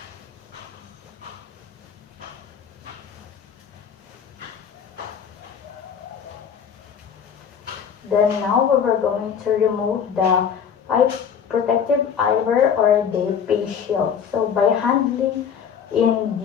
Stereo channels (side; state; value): right; quieter; 7.5 dB